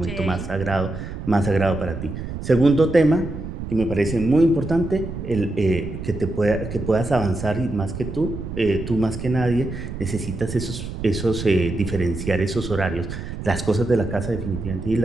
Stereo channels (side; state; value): right; noise; rumble, 8 dB below the sound